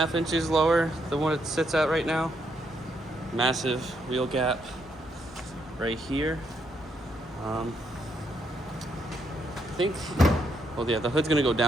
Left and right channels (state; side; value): normal; both; correlation 0.76